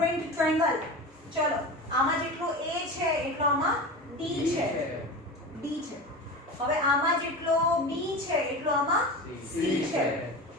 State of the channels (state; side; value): normal; both; correlation 0.28